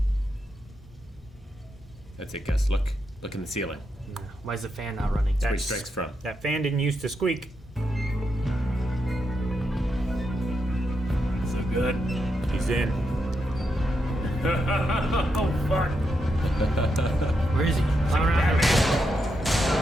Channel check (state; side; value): normal; both; correlation 0.83